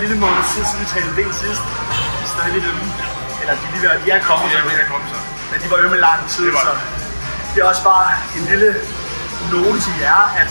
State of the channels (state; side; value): inverted; both; correlation -1.00